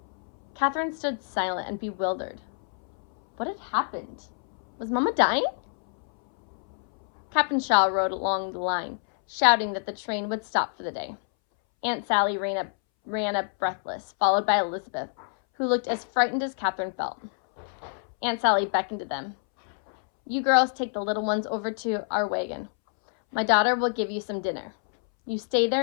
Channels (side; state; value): right; silent; 60 dB below the other